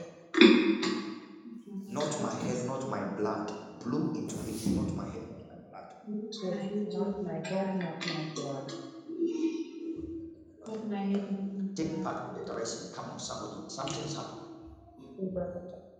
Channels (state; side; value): identical; both; correlation 1.00